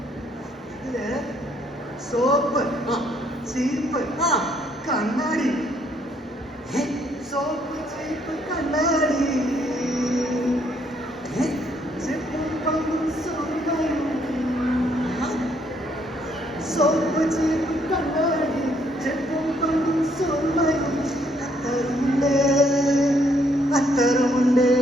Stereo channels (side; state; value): both; normal; correlation 0.69